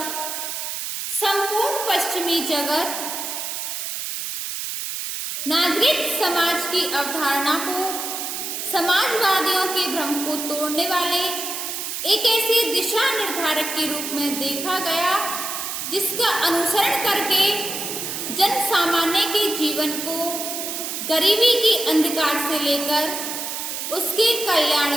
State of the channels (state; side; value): noise; right; hiss, 5 dB below the sound